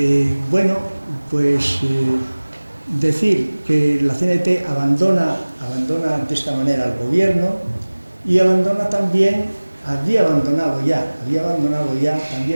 Bueno, pues decir que la CNT abandona de esta manera al gobierno, y abandona también, había abandonado ya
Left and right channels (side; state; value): both; inverted; correlation -1.00